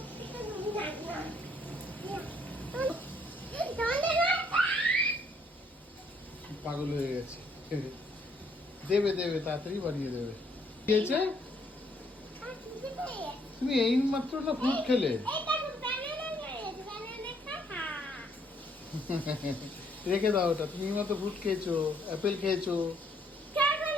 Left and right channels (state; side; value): normal; both; correlation 0.68